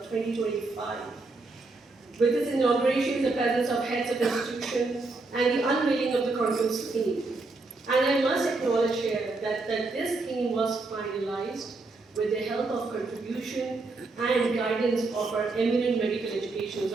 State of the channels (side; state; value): left; quieter; 3.5 dB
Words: 2025 with its inauguration in the presence of heads of institutions and the unveiling of the conference theme. And I must acknowledge here that this theme was finalized with the help of contribution and guidance of our eminent medical